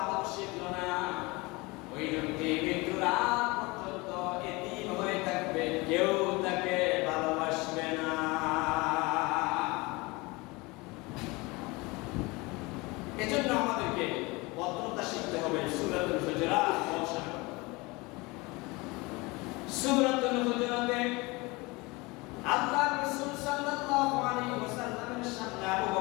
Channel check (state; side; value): quieter; right; 24.4 dB